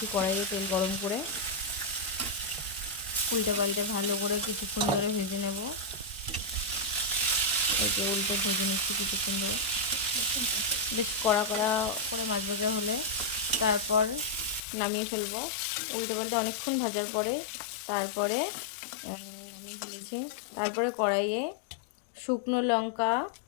কড়াইয়ে তেল গরম করে। উল্টে পাল্টে ভালো করে কিছুক্ষণ ধরে ভেজে নেব। এই যে উল্টে ভেজে নিচ্ছি কিছুক্ষণ ধরে, বেশ কড়া কড়া করে মাছ ভাজা হলে তারপর নামিয়ে ফেলবো। উল্টে পাল্টে অনেকক্ষণ ভাজার পরে তারপরে নামিয়ে ফেলেছি। তারপরে কড়াইয়ে শুকনো লঙ্কা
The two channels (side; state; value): right; drops out; at 14.6 s